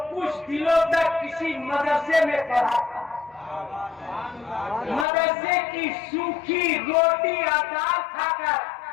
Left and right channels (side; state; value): right; drops out; at 5.1 s